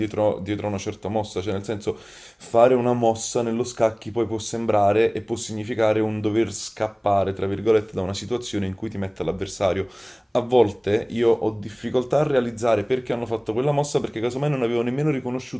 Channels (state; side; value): identical; both; correlation 1.00